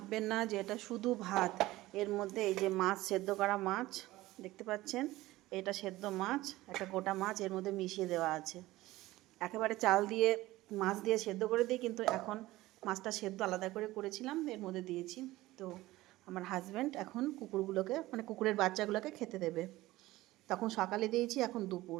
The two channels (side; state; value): left; quieter; 17.6 dB